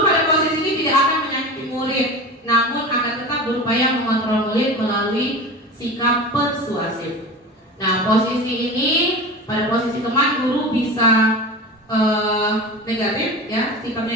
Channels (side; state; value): both; normal; correlation 0.30